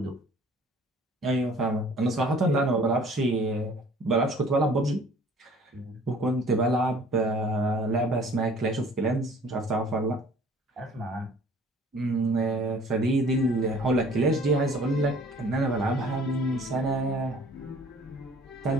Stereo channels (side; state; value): both; normal; correlation 0.52